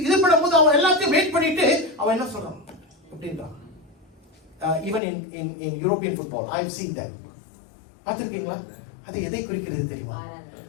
இது பண்ணும்போது அவன் எல்லாத்தையும் வெயிட் பண்ணிட்டு அவன் என்ன சொல்றான்? அப்படின்றான். Even in European football I have seen that. பார்த்திருக்கீங்களா? அது எதை குறிக்கிறது தெரியுமா?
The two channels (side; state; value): right; drops out; at 5.0 s